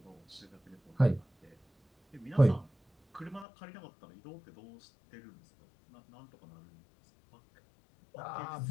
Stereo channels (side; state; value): right; drops out; at 3.5 s